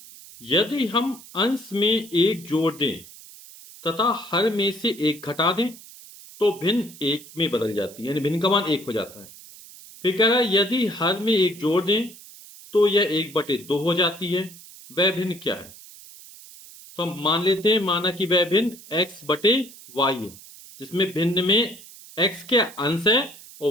यदि हम अंश में एक जोड़ दें तथा हर में से एक घटा दें तो भिन्न एक में बदल जाती है, यानी भिन्न का मान एक हो जाता है। फिर कह रहा है यदि हर में एक जोड़ दें तो यह 1/2 हो जाती है, वह भिन्न क्या है? तो हम मान लेते हैं, माना कि वह भिन्न x/y है, जिसमें भिन्न में x क्या अंश है और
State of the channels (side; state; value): right; noise; hiss, 19 dB below the sound